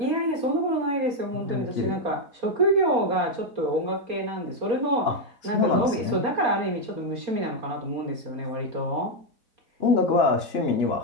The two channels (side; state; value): left; late; 4.3 ms